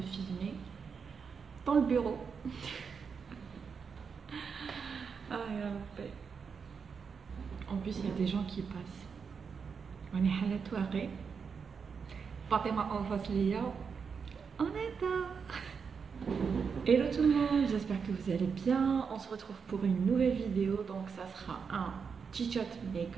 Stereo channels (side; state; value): left; quieter; 6.0 dB